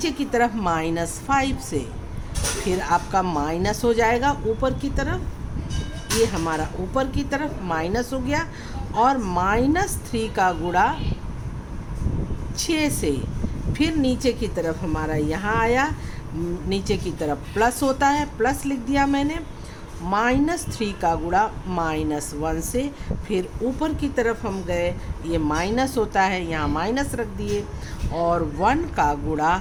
की तरफ -5 से, फिर आपका माइनस हो जाएगा ऊपर की तरफ, ये हमारा ऊपर की तरफ माइनस हो गया। और -3 का गुणा 6 से, फिर नीचे की तरफ हमारा यहाँ आया, नीचे की तरफ प्लस होता है, प्लस लिख दिया मैंने। -3 का गुणा -1 से, फिर ऊपर की तरफ हम गए, ये माइनस होता है, यहाँ माइनस रख दिए। और 1 का गुणा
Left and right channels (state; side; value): identical; both; correlation 1.00